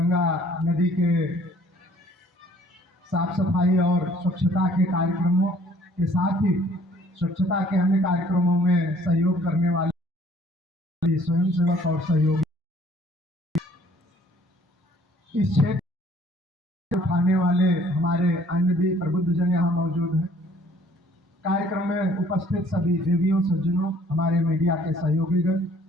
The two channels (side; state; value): both; normal; correlation 0.58